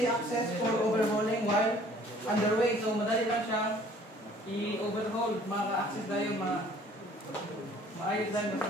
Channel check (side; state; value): both; normal; correlation 0.54